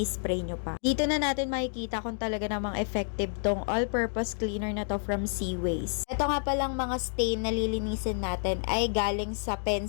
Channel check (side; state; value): right; silent; digital silence